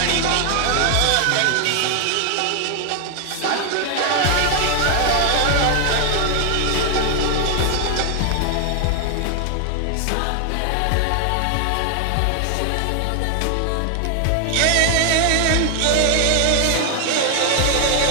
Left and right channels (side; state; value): both; different; correlation 0.00